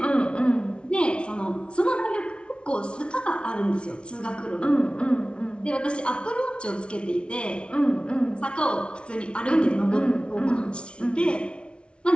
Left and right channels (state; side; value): late; right; 0.058 ms